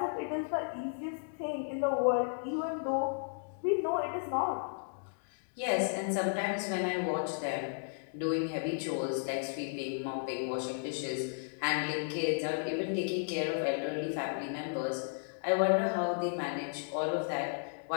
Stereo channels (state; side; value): silent; right; digital silence